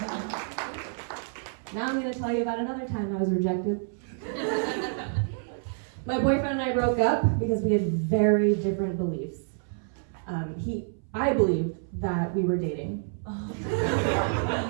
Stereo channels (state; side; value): silent; left; 59 dB below the other